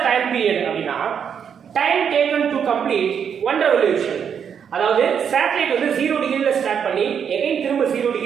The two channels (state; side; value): quieter; left; 7.6 dB